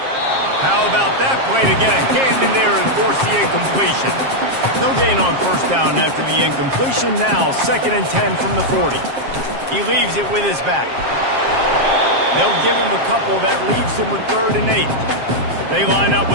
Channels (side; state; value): left; late; 7.5 ms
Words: How about that play to get a hand in there and force the incompletion? No gain on first down after the incompletion. Now 2nd and 10 from the 40. He leaves it with his back. They'll give him a couple. That leaves him with 3rd and 8. They line up